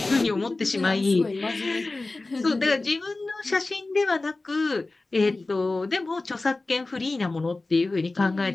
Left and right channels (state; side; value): quieter; right; 3.2 dB